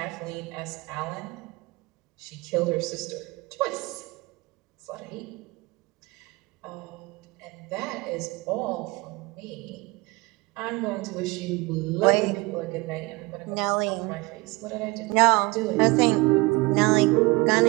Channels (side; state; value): left; quieter; 24.1 dB